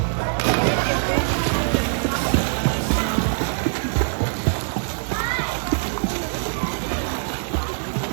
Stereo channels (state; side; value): silent; left; digital silence